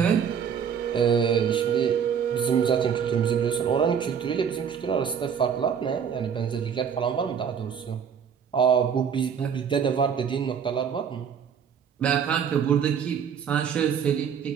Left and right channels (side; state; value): left; quieter; 7.5 dB